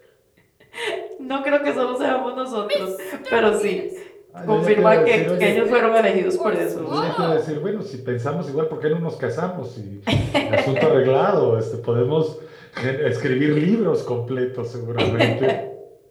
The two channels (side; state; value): both; identical; correlation 1.00